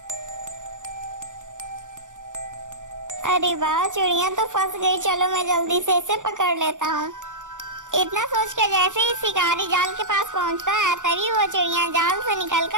अरे वाह, चिड़िया तो फंस गई, चलो मैं जल्दी से इसे पकड़ लेता हूँ। इतना सोचकर जैसे ही शिकारी जाल के पास पहुँचता है तभी वो चिड़िया जाल से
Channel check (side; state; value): left; late; 0.86 ms